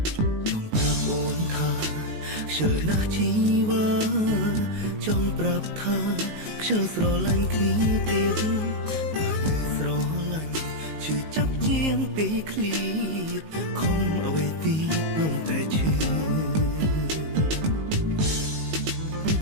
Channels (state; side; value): late; left; 19 ms